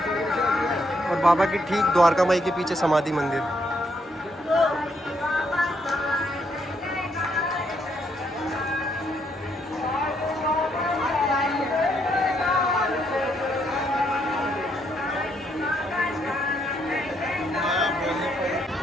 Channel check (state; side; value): normal; both; correlation 0.74